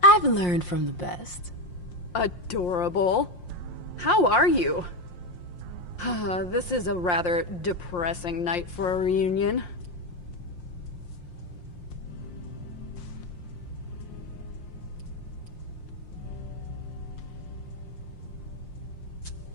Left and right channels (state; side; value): late; right; 5.6 ms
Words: I've learned from the best. Adorable. How are you? This is a rather depressing night for a reunion.